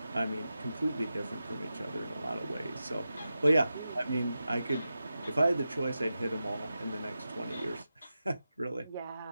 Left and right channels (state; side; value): inverted; both; correlation -0.91